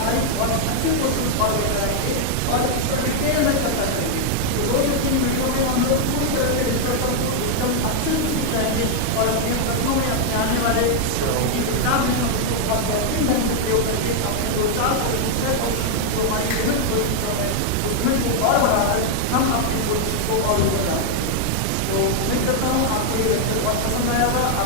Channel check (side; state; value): both; different; correlation 0.00